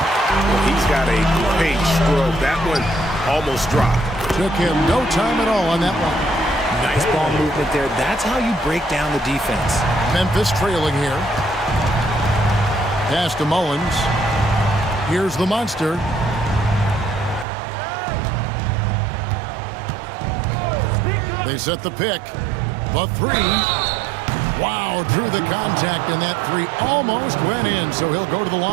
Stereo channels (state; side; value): drops out; left; at 17.4 s